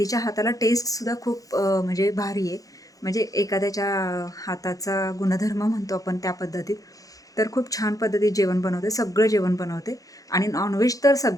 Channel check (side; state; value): right; late; 0.17 ms